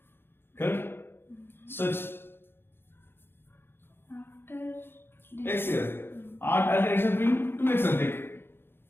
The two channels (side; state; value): right; late; 0.11 ms